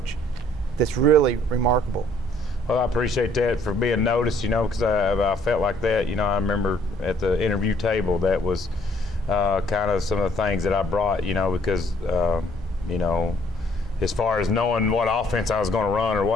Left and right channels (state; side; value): normal; both; correlation 0.63